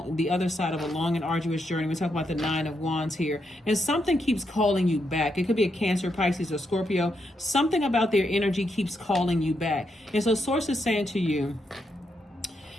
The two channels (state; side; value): normal; both; correlation 0.81